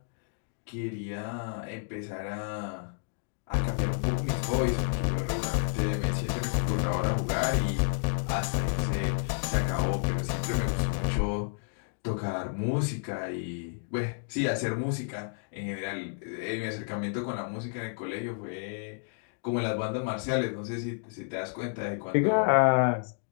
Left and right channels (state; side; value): silent; right; digital silence